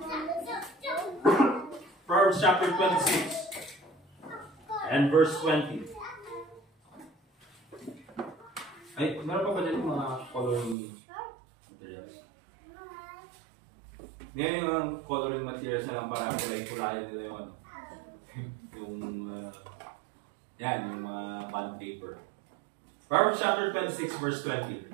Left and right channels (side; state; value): left; drops out; at 10.8 s